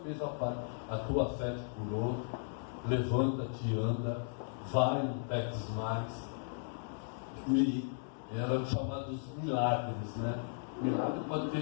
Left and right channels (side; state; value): right; silent; digital silence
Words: fez a parte, a tua fé te curou, levanta-te, anda, vai, não peques mais. E eram chamados milagres, né? Milagre pode